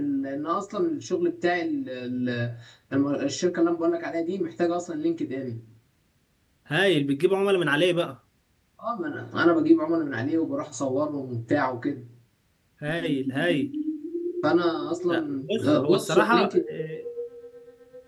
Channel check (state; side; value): identical; both; correlation 1.00